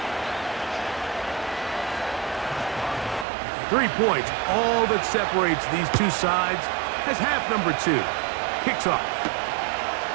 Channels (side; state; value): left; drops out; at 3.2 s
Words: 3 points, all that separates these two sides, as half number 2 kicks off.